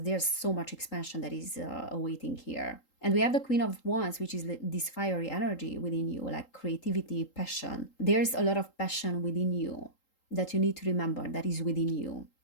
there's so much expansion that is awaiting here. And we have the Queen of Wands, which is this fiery energy within you, like creativity, passion. There's a lot of passion within you that you need to remember that is within you.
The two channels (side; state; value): right; late; 3.8 ms